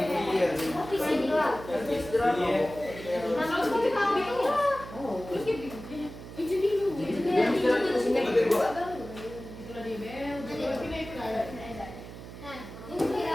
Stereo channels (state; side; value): noise; right; hum, 13 dB below the sound